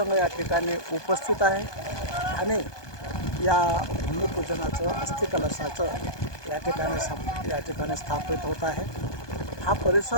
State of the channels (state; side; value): late; right; 1.2 ms